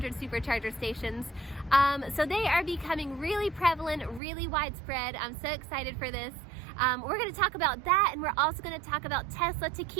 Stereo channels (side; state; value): left; drops out; at 4.2 s